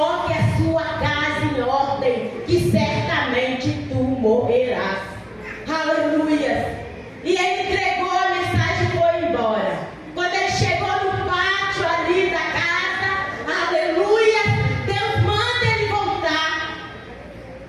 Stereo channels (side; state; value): both; identical; correlation 1.00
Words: a sua casa em ordem, que certamente tu morrerás. Aleluia! E ele entregou a mensagem e foi embora. Quando ele chegou no pátio ali da casa, aleluia, Deus manda ele voltar.